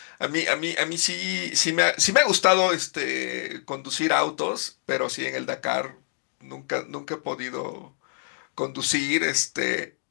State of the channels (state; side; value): silent; right; digital silence